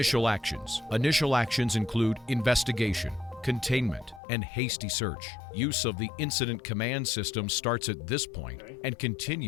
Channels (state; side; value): drops out; right; at 4.2 s